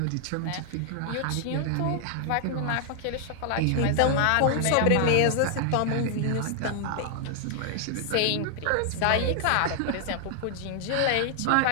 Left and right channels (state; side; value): different; both; correlation 0.00